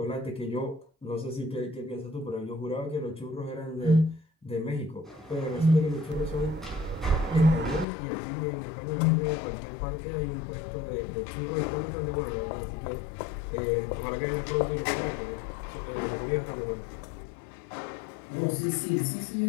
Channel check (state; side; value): drops out; right; at 7.9 s